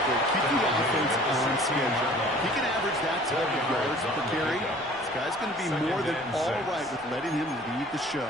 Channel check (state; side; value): noise; left; rumble, 27 dB below the sound